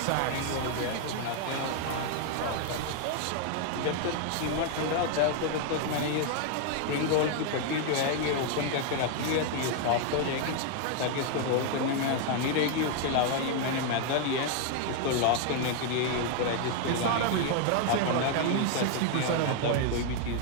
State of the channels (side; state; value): both; different; correlation 0.00